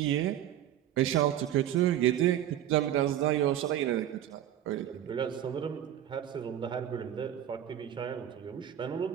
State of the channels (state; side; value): quieter; left; 11.3 dB